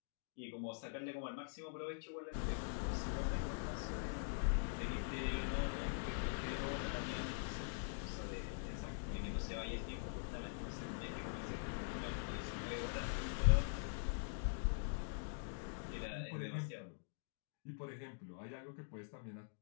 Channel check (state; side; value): silent; right; digital silence